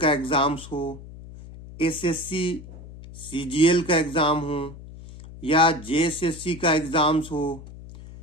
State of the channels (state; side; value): noise; left; hum, 16 dB below the sound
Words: का एग्जाम्स हो, एसएससी सीजीएल का एग्जाम हो या जेएसएससी का एग्जाम्स हो,